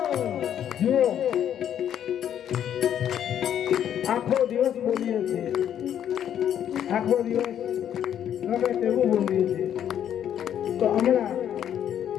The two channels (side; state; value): right; quieter; 9.9 dB